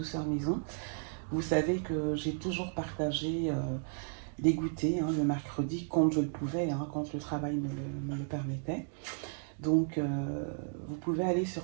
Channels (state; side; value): silent; left; 55 dB below the other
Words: Maison, vous savez que j'ai toujours partagé des goûters le mercredi quand je le pouvais, quand le travail me le permettait. Donc vous pouvez aller sur